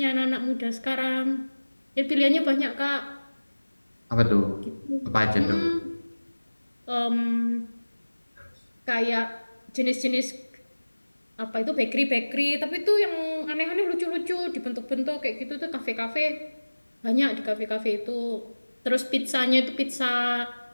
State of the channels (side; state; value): both; inverted; correlation -1.00